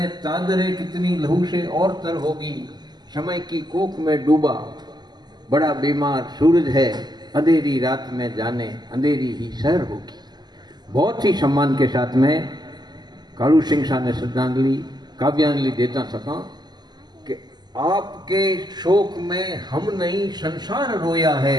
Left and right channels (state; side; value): late; left; 0.20 ms